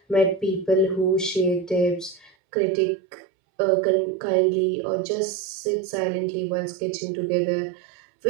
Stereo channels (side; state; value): left; drops out; at 2.3 s